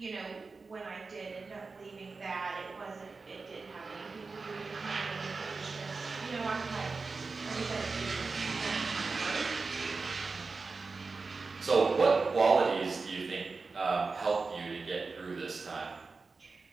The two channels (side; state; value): left; quieter; 4.2 dB